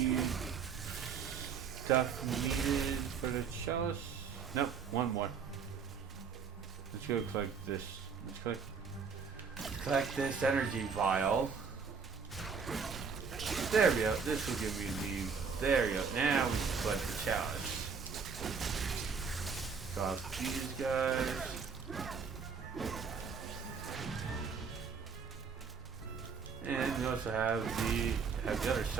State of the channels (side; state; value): left; quieter; 5.8 dB